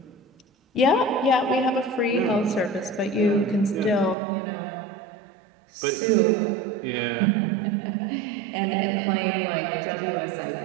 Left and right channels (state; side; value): drops out; left; at 4.2 s